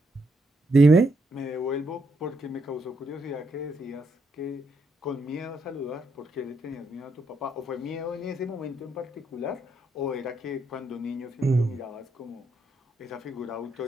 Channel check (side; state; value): both; normal; correlation 0.77